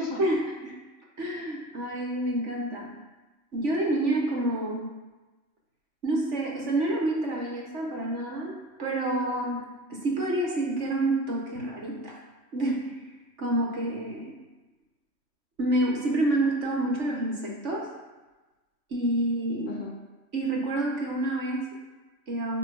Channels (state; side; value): late; left; 3.5 ms